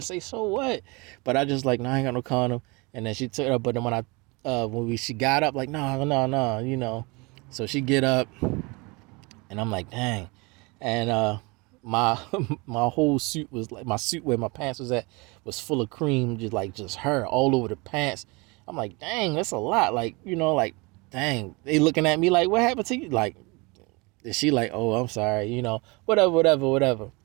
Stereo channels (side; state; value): left; quieter; 27.1 dB